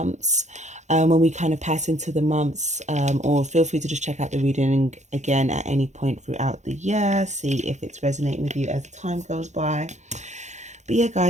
when we kind of pass into the months, or feel free to just check out the reading again at any point throughout the year. See if it's resonating with you as time goes by. But yeah,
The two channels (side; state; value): left; late; 0.34 ms